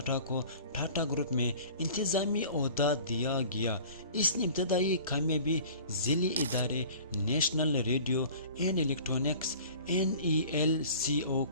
کو ٹاٹا گروپ میں انتظامی عہدہ دیا گیا۔ اس نے ابتدائی کامیابی ذیلی ادارے national radio and electronics NELCO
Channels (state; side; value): inverted; both; correlation -0.45